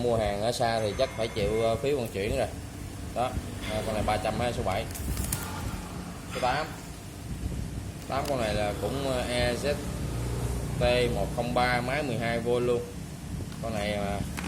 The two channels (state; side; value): identical; both; correlation 1.00